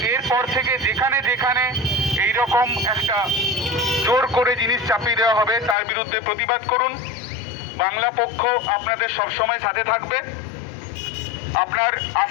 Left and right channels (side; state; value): right; drops out; at 5.8 s